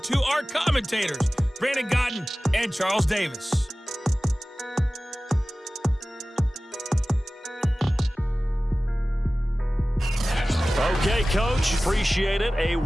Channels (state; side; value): normal; both; correlation 0.97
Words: our commentators, Brandon Godden and Charles Davis. Okay, Coach, appreciate it. A